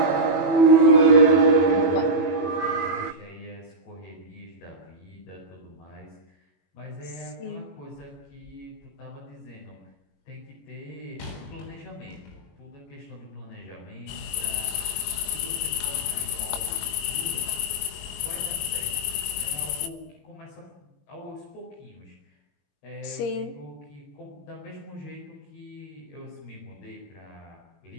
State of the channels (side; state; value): right; late; 21 ms